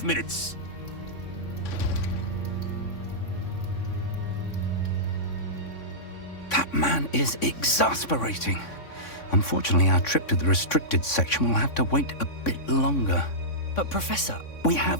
minutes. That man is exasperating. Unfortunately, our trip to the restricted section will have to wait a bit longer. But Professor... We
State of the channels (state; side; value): late; right; 3.6 ms